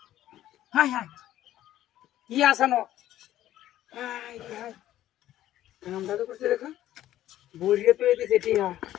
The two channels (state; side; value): quieter; right; 13.2 dB